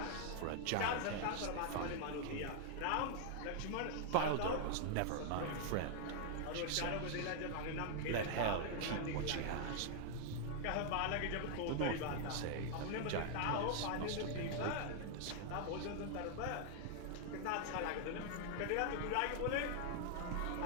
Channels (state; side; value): different; both; correlation 0.00